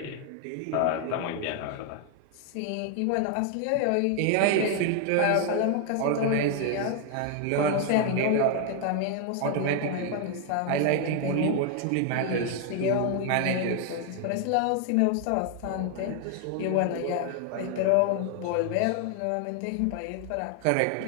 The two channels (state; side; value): different; both; correlation 0.00